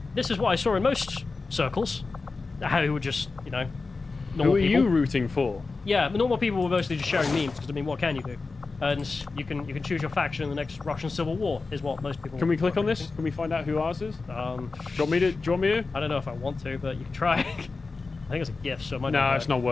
this is what I saw in most circles. How you would just, you know, normal Who are people. you rooting for? Yeah, but normal people were mostly just sharing memes because I mean, what can you do? And you can choose your faction in the next Russian Civil War is what most people. Can we click were on this? thinking. Can we find out who ours is? Do Um, you want me to? Do you want me to? I don't know if I want to, but you can try. I think it's a gift, so it might No, not it's not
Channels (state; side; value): quieter; right; 4.0 dB